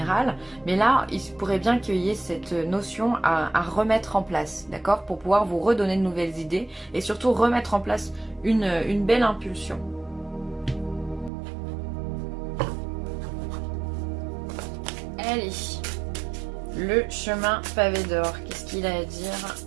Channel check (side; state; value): left; drops out; at 11.3 s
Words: mais là, il pourrait bien qu'il y ait cette notion à remettre en place, d'accord? Pour pouvoir vous redonner de nouvelles idées et surtout remettre en place une belle impulsion. Allez, le chemin pavé d'or, qu'est-ce qu'il a à dire